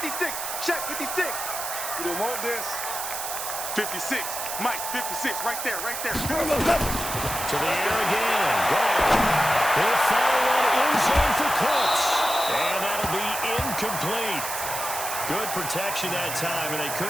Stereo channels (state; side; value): noise; right; hiss, 5 dB below the sound